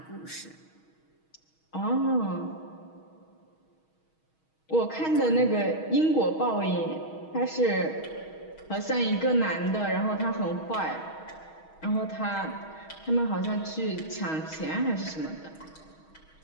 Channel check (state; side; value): late; right; 6.3 ms